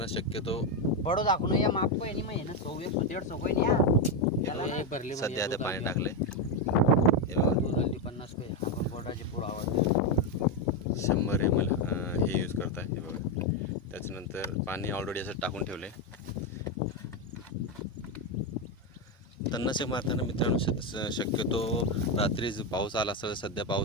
शक्यतो बडो दाखवून या माप को नाही माहिती ना 100-150 कोई नाही या सध्या आता पाणी टाकले. हे बघा 250 पे आपण बोर्डाचे पुढं आवाज 100 ml हे यूज करताय. हे बघा त्याच्यानंतर पाणी ऑलरेडी असं टाकून ठेवले. तणनाशक मारताना मित्रांनो शक्यतो रात्री पाऊस आला असेल, सध्या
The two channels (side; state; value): both; normal; correlation 0.07